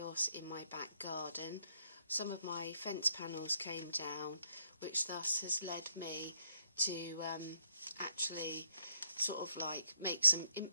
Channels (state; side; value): inverted; both; correlation -0.71